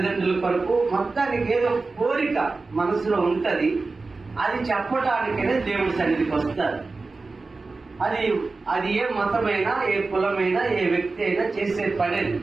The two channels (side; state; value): left; quieter; 3.8 dB